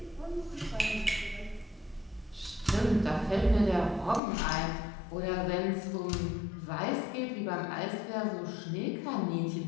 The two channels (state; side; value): drops out; right; at 4.2 s